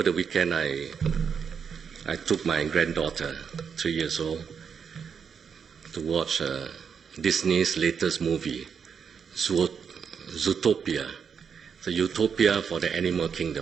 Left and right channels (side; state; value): left; quieter; 6.7 dB